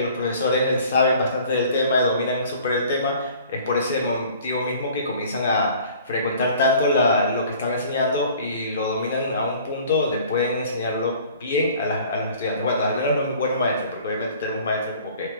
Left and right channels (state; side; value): inverted; both; correlation -0.50